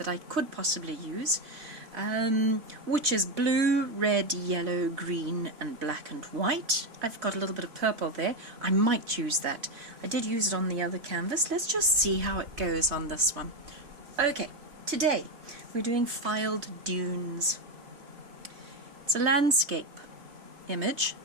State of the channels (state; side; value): late; left; 3.4 ms